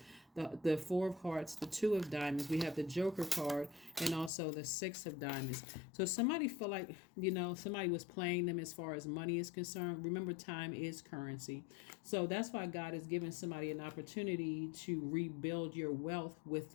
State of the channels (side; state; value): right; drops out; at 4.3 s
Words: the Four of Hearts, the Two of Diamonds. We have the Joker card, and also the Six of Diamonds. So somebody feel like, somebody was playing them as far as money is concerned. Remember, time is currency. So that's why God is giving somebody an opportunity to rebuild your wealth